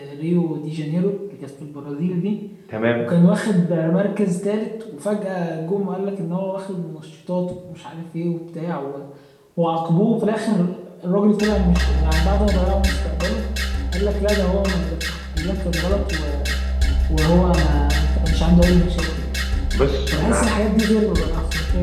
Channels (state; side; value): identical; both; correlation 1.00